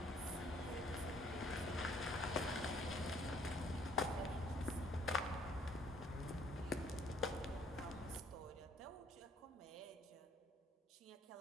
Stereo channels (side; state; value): both; normal; correlation 0.62